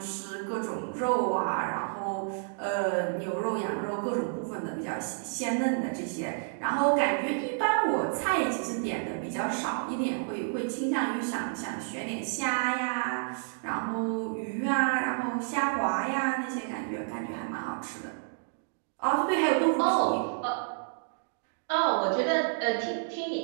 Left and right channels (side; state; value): left; silent; digital silence